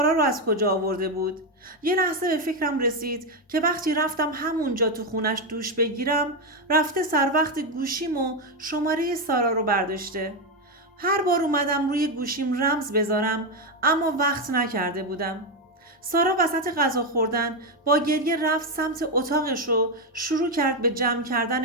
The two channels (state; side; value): normal; both; correlation 0.07